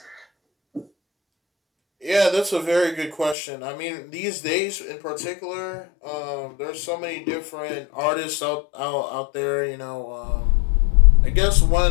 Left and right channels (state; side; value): drops out; right; at 3.4 s